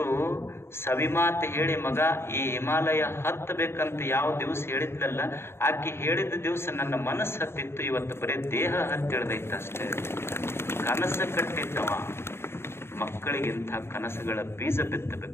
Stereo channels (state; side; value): late; right; 0.12 ms